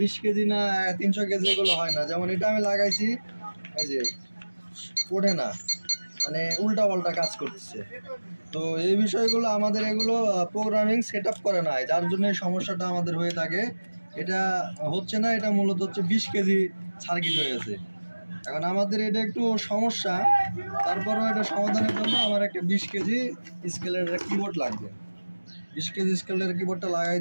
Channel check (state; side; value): inverted; both; correlation -1.00